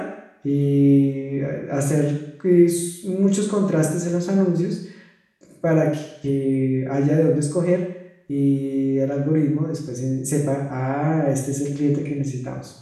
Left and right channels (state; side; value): identical; both; correlation 1.00